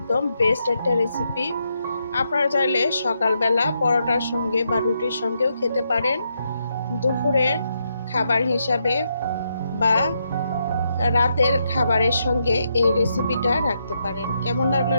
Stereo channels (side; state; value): both; inverted; correlation -0.80